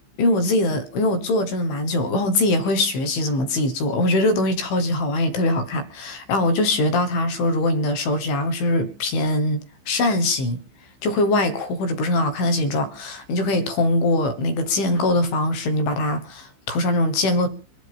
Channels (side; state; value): right; late; 15 ms